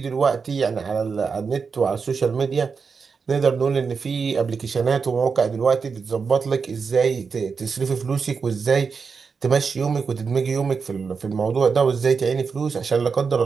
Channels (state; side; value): quieter; left; 5.4 dB